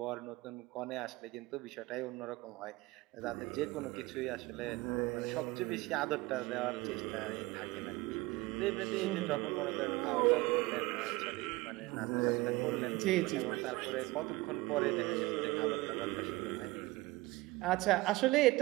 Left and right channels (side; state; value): left; quieter; 21.0 dB